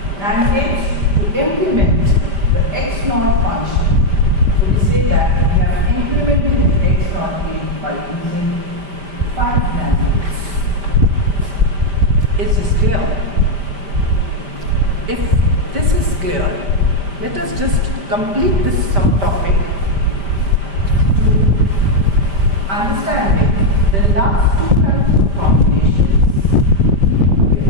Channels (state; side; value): late; left; 5.1 ms